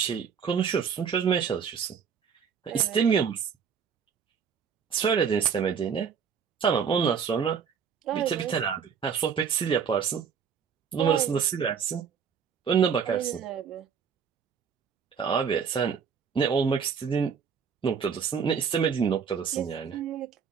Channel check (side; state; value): left; quieter; 6.8 dB